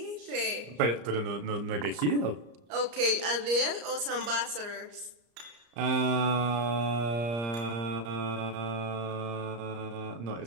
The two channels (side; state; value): left; late; 34 ms